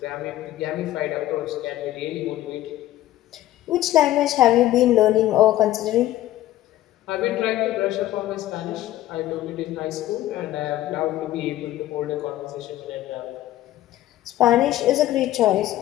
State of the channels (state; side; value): quieter; right; 14.3 dB